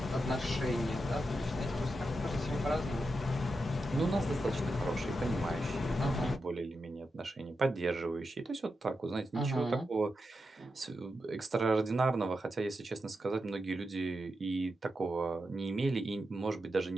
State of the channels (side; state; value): both; normal; correlation 0.88